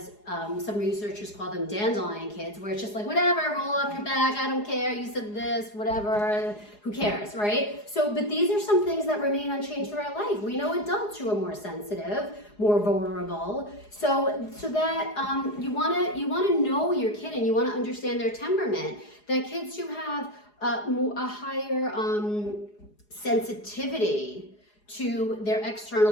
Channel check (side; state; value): right; late; 4.8 ms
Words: some researchers call them dandelion kids, where it's just like, whatever, roll up your back, I don't care, you said this, whatever, who cares, right? So, but these are some things that remain unchanged throughout life. We know adults who are more sensitive, more vulnerable. So that you wanna know your kid, and you wanna understand their temperament. That kids who have a higher sensitivity to their external